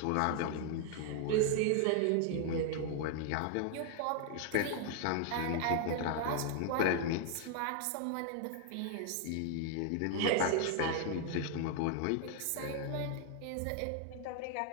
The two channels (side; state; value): both; different; correlation 0.00